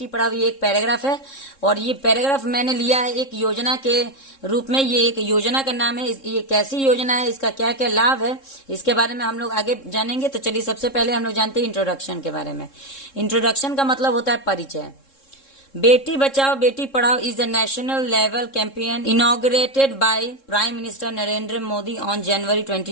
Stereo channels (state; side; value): late; right; 3.7 ms